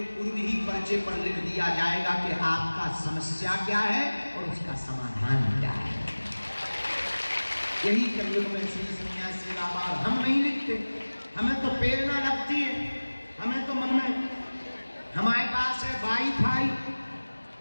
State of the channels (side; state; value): both; inverted; correlation -1.00